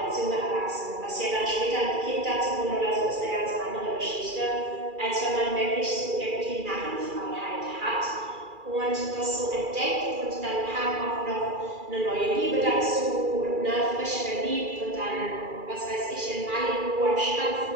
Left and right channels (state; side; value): late; left; 2.4 ms